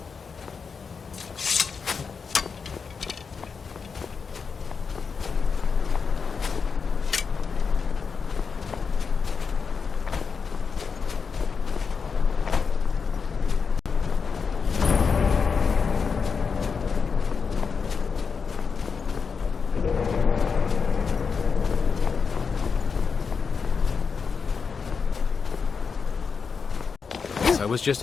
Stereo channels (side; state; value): right; quieter; 5.6 dB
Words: I was just